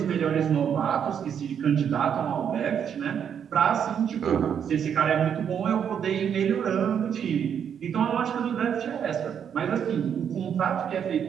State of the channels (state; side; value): quieter; left; 8.2 dB